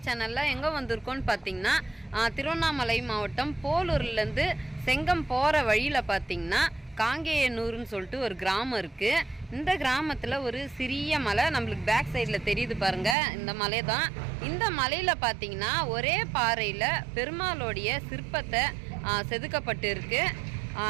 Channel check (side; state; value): left; drops out; at 13.2 s